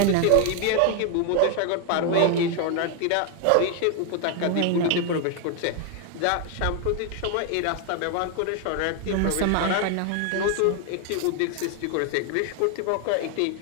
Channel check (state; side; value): different; both; correlation 0.01